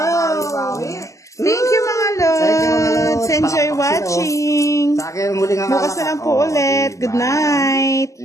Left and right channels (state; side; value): late; right; 0.16 ms